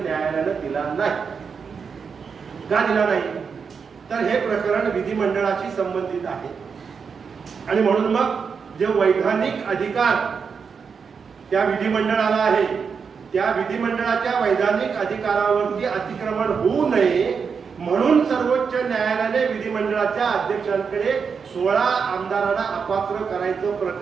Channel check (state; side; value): quieter; left; 5.9 dB